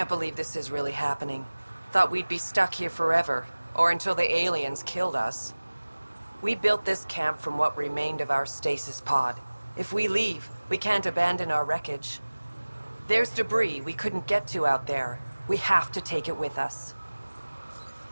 believe this is really happening. Thought we'd be stuck here forever, or until the aliens killed us. We built this camp from what remained of our stasis pod. If we leave, we can't abandon our wreckage. There's debris we couldn't get to out there. We have to take it with us.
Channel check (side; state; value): both; inverted; correlation -1.00